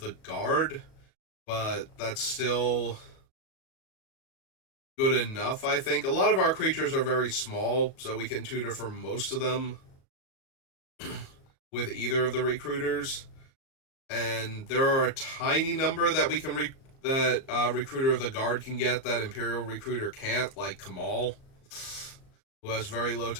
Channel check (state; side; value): late; right; 37 ms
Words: guard, but that's still good enough, I think. A lot of our creatures are very small, so we can tutor for most of them with either of the recruiters. And there are a tiny number that we can Recruiter of the Guard can get that Imperial Recruiter can't, like Kamal, who has very low